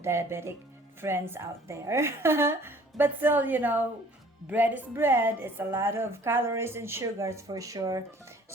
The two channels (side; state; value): both; normal; correlation 0.53